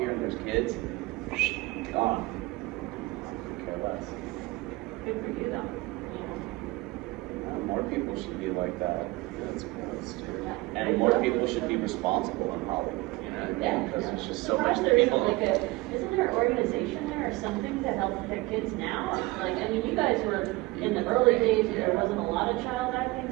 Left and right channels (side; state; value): left; quieter; 21.4 dB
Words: and there's kids. Gone. Care less. Good for you, though. More people should be like that. That's gross, too. And more people should be responsible in Hollywood. You know what I mean? Because there's just so much people. Isn't there an organization there or something to help protect kids now? Like, I mean, you guys were in the early days where there wasn't a lot of child acting,